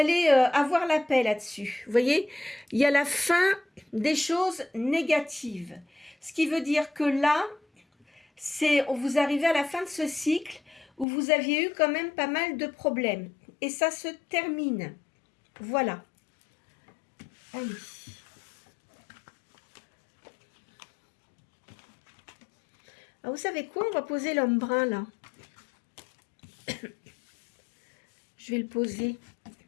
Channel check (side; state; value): right; drops out; at 11.1 s